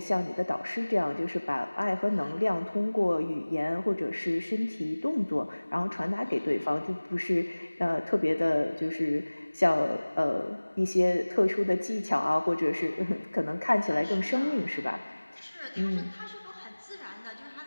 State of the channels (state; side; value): inverted; both; correlation -1.00